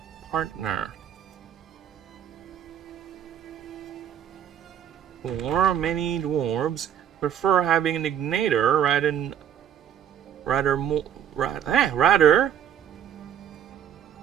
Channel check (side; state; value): left; quieter; 9.3 dB